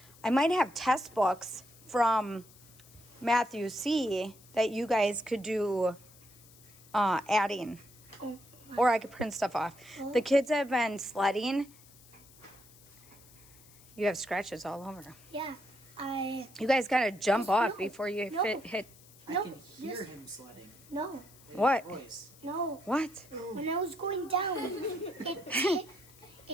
might have test books from Matthew C that you guys could do adding. Or I could print stuff off. The kids have been sledding. You have scratches all over. Yeah, You guys gotta jump off before you hit. I can hear him sledding. No. In What? his voice. No. What? When I was going down, it hit me,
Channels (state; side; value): noise; left; hiss, 24 dB below the sound